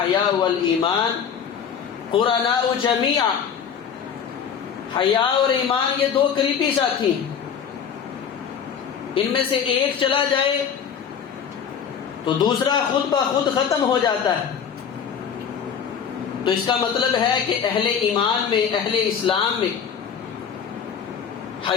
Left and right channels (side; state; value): right; quieter; 7.4 dB